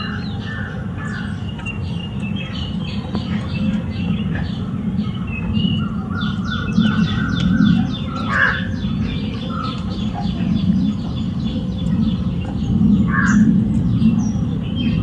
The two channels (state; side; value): identical; both; correlation 1.00